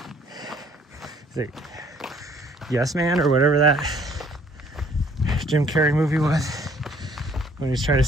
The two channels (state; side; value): normal; both; correlation 0.60